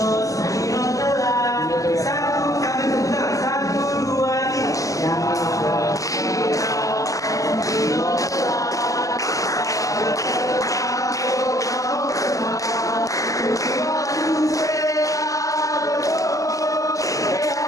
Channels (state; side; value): late; right; 0.16 ms